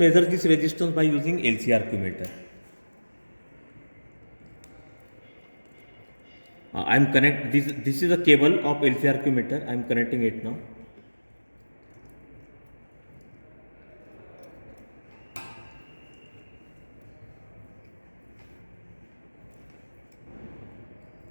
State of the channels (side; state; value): both; inverted; correlation -1.00